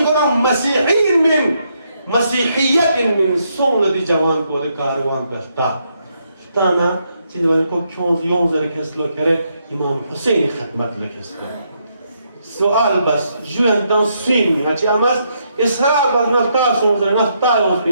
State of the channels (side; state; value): both; inverted; correlation -0.77